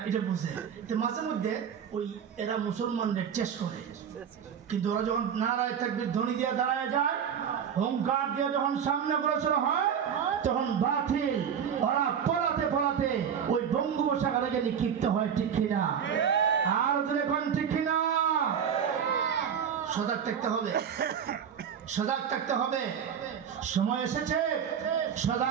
এটা বুঝে, তো মাঝে মধ্যে ওই এরা মুসলমানদের টেস্ট করে। কিন্তু ওরা যখন নারায় তাকবীর ধ্বনি দিয়ে দাঁড়ায় যায়, হুঙ্কার দিয়ে যখন সামনে অগ্রসর হয়, তখন বাতিল ওরা পলাতে পলাতে ওই বঙ্গোপসাগরে গিয়ে নিক্ষিপ্ত হয়, ঠিক কিনা? আর এখন ঠিক কিনা? সজাগ থাকতে হবে, সজাগ থাকতে হবে। সময় এসেছে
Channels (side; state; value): left; quieter; 7.9 dB